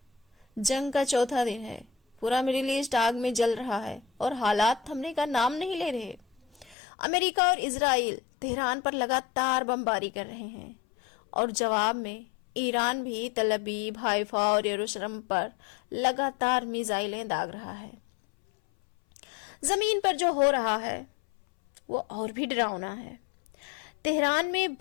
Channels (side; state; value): right; drops out; at 6.8 s